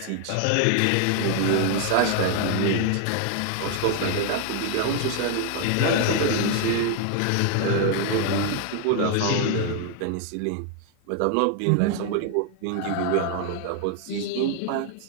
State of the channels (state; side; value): different; both; correlation 0.00